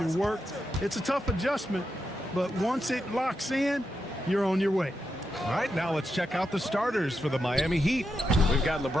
work. It's a tough adjustment, but once it locks in, you're on your way. All right, now let's check out the starters for the Miami Heat. We've got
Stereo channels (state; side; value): normal; both; correlation 0.86